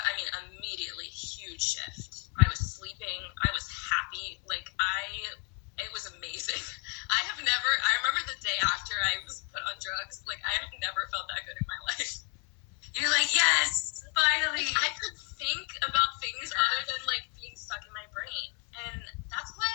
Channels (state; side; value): quieter; right; 36.4 dB